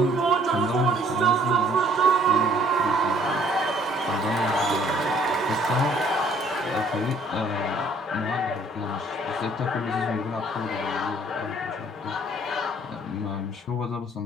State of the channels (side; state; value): both; normal; correlation 0.59